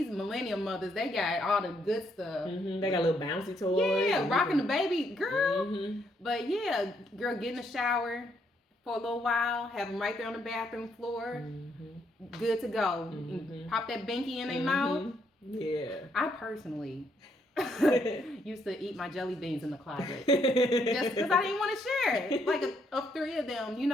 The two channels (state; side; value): normal; both; correlation 0.73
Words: millennial mothers, they got all the good stuff. They got little bouncy toys. Yeah, rocking the baby, girl. But yeah, girl, get in the shower for a little while, have them right there on the bathroom floor. Good to go. Pop that binky in their mouth. Yeah. I personally used to eat my jelly beans in the closet just because I didn't want to share it. Like of three of them,